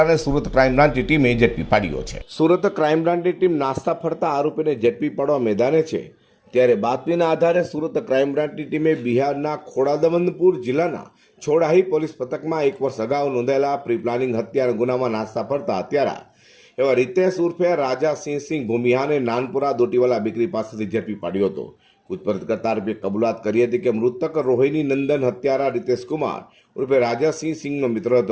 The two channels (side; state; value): both; identical; correlation 1.00